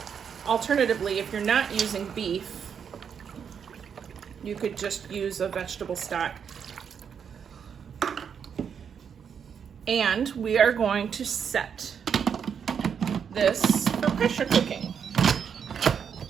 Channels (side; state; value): left; quieter; 7.3 dB